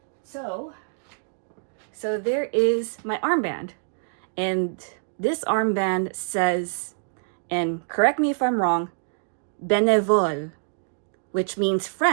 So there is my armband, and this armband says, and correct me if I'm wrong, bénévole, which means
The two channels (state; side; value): silent; left; digital silence